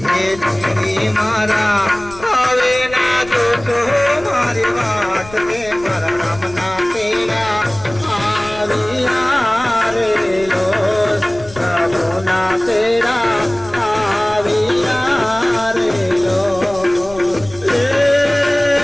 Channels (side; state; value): left; noise; rumble, 18 dB below the sound